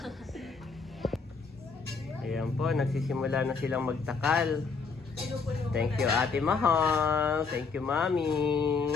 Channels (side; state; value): right; quieter; 4.9 dB